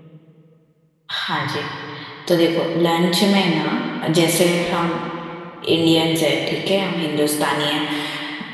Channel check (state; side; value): identical; both; correlation 1.00